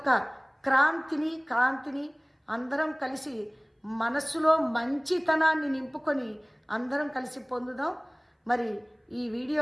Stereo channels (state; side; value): identical; both; correlation 1.00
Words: కాంతిని అందరం కలిసి మనస్సులో మంచితనాన్ని నింపుకొని అందరం కలిసి పొందుదాం. మరి ఈ వీడియో